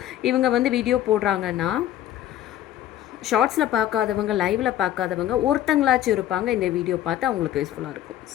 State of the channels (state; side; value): quieter; right; 12.4 dB